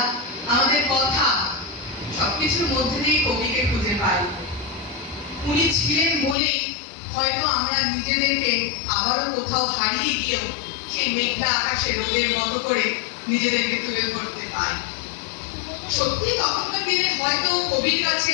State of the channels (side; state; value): right; drops out; at 6.4 s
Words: আমাদের কথা সবকিছুর মধ্যে দিয়ে কবিকে খুঁজে পাই। উনি ছিলেন বলেই হয়তো আমরা নিজেদেরকে আবারও কোথাও হারিয়ে গিয়েও সেই মেঘলা আকাশে রোদের মতো করে নিজেদেরকে তুলে ধরতে পাই। সত্যি তখনকার দিনে হয়তো কবির কাছে